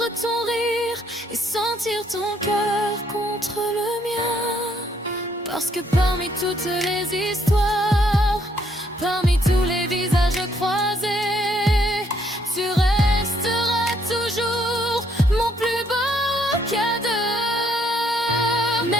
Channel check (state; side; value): normal; both; correlation 0.70